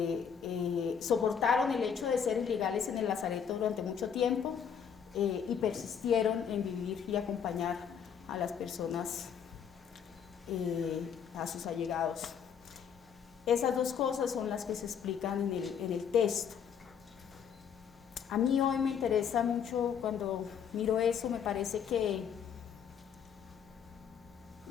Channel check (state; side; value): quieter; right; 7.6 dB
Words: soportaron el hecho de ser ilegales en el lazareto durante mucho tiempo y persistieron en vivir y acompañar a las personas, a sus allegados. Esas dos cosas son las que se explican en el texto. A mí hoy me interesa mucho, cuando miro eso, me parece que